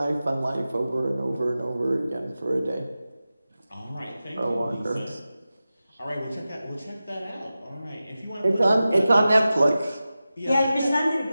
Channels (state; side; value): inverted; both; correlation -0.94